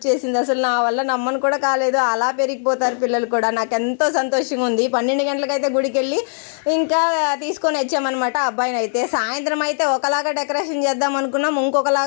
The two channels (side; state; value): right; silent; 62 dB below the other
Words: అసలు నా వల్ల నమ్మను కూడా కాలేదు. అలా పెరిగిపోతారు పిల్లలు కూడా. నాకు ఎంతో సంతోషంగా ఉంది. 12 గంటలకైతే గుడికి వెళ్ళి ఇంకా తీసుకొని వచ్చామన్నమాట అబ్బాయిని. అయితే సాయంత్రం అయితే ఒకలాగా డెకరేషన్ చేద్దాం అనుకున్నాం,